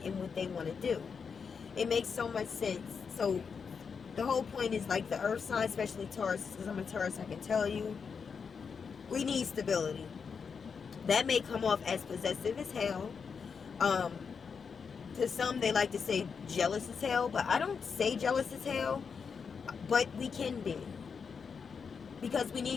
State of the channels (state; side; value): quieter; right; 5.9 dB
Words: and what they want to do. It makes so much sense. So the whole point is, like, the earth sign, especially Taurus, because I'm a Taurus, I can tell you, we need stability. That may come off as possessive as hell. To some, they like to say jealous as hell, but I don't say jealous as hell, but we can be. Because we